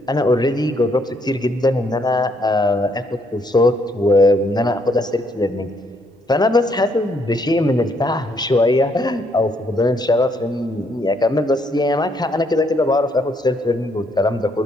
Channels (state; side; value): normal; both; correlation 0.71